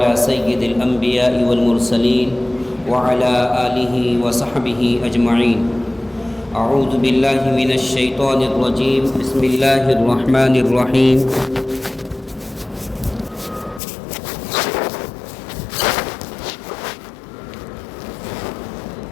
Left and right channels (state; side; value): drops out; right; at 13.8 s